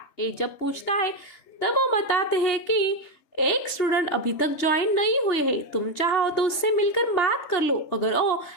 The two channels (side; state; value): right; late; 3.3 ms